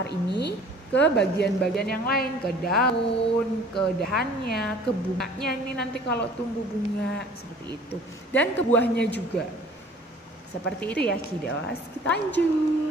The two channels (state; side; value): normal; both; correlation 0.50